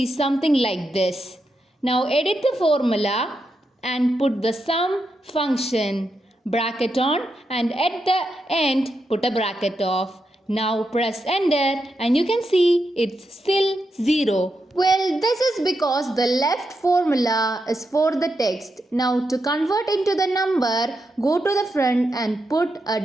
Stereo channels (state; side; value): normal; both; correlation 0.85